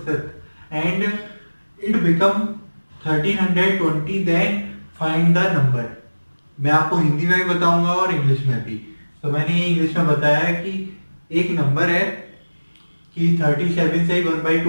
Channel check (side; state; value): both; inverted; correlation -1.00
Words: and it become 1320, then find the number. मैं आपको हिंदी में भी बताऊंगा और इंग्लिश में भी। तो मैंने ये इंग्लिश में बताया है कि एक नंबर है कि 37 से